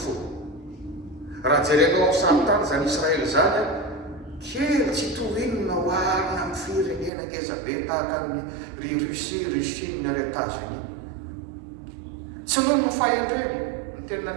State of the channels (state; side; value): drops out; left; at 7.1 s